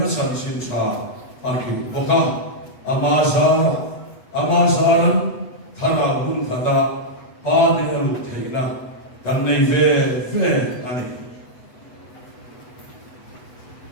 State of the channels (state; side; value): late; right; 8.1 ms